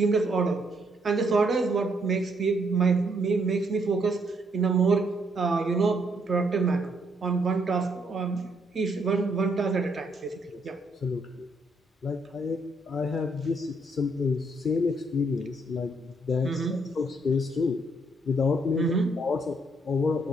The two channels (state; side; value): normal; both; correlation 0.72